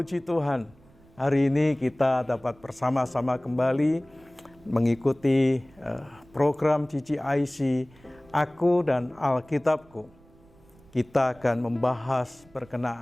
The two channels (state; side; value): noise; right; rumble, 27 dB below the sound